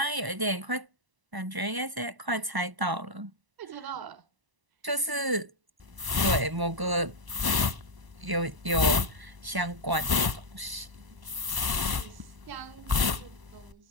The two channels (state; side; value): late; left; 1.0 ms